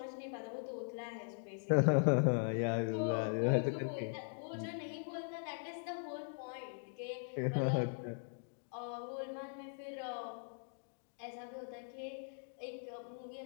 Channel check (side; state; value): right; silent; digital silence